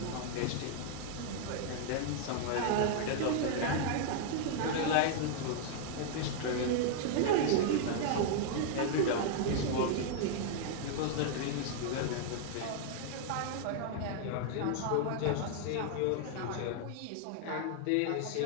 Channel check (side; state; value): both; different; correlation 0.00